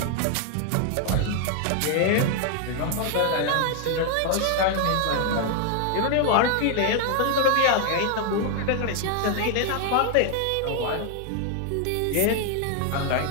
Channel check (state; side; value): different; both; correlation 0.00